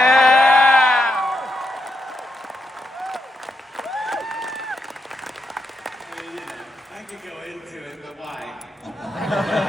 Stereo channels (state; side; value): normal; both; correlation 0.83